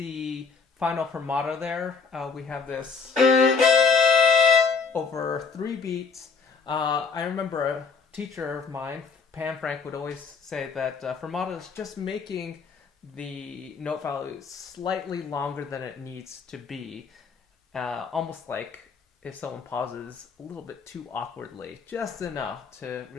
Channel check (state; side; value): quieter; right; 5.1 dB